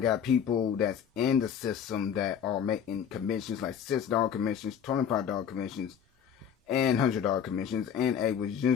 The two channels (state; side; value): quieter; right; 8.1 dB